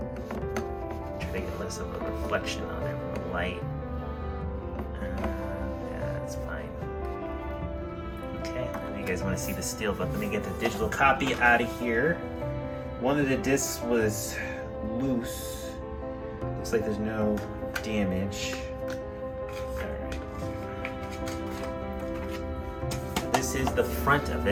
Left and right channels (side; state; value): both; identical; correlation 1.00